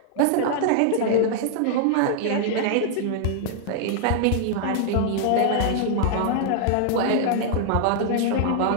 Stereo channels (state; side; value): different; both; correlation -0.01